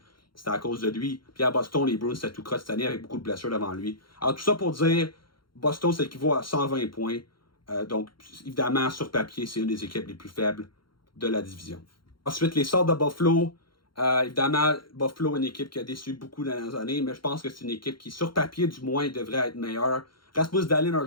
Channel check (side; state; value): right; late; 0.73 ms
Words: c'était à cause de lui. Puis à Boston, les Bruins, c'était tout croche cette année avec beaucoup de blessures devant lui. Alors tout ça pour dire, Boston, ça équivaut à 120 points. Donc, évidemment, sur papier, c'est une des équipes les plus faibles de la division. Ensuite, les Sabres de Buffalo. Évidemment, Buffalo est une équipe qui a déçu beaucoup dans les dernières années, mais je pense que c'est une équipe qui, sur papier, du moins, devrait être meilleure. Rasmus Dahlin, un